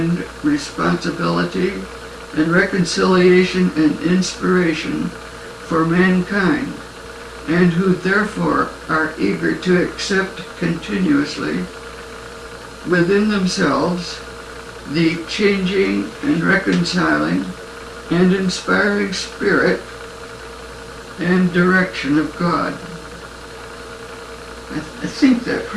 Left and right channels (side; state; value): both; identical; correlation 1.00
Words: responsibility and reconciliation and inspiration for mankind, and who therefore are eager to accept continuously within themselves the changing and reconciling and inspiring spirit and direction of God. I think that